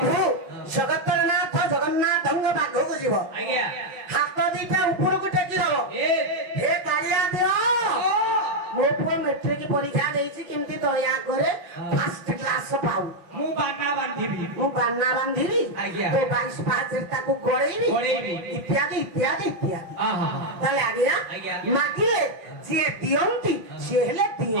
ଜଗତର ନାଥ ଜଗନ୍ନାଥଙ୍କ ପାଖକୁ ଯିବ ହାତ ଦିଟା ଉପରକୁ ଟେକି ଦବ ଏ କାଳିଆ ଦିଅ ମୋ ପୁଅ ମେଟ୍ରିକ ପରୀକ୍ଷା ଦେଇଛି କେମିତି ଦୟା করে ଫାଷ୍ଟ କ୍ଲାସ ପାଉ ମୁଁ ବାନା ବାନ୍ଧିବି ମୁଁ ବାନା ବାନ୍ଧିବି ତ 22 ପାହାଚରେ ତାକୁ ଗଳେଇବି ଇତ୍ୟାଦି ଇତ୍ୟାଦି ଇତ୍ୟାଦି ତାହେଲେ ଆଜ୍ଞା ମାଗିଲେ ଯିଏ ଦିଅନ୍ତି ସିଏ ହେଲେ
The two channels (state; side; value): late; left; 5.9 ms